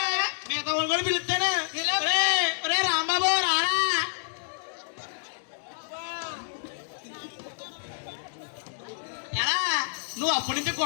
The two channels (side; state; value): right; silent; digital silence